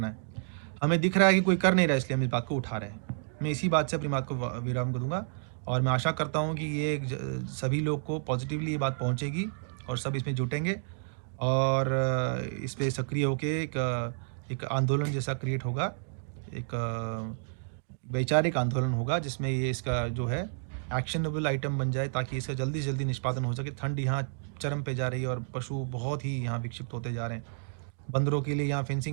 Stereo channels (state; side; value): silent; left; digital silence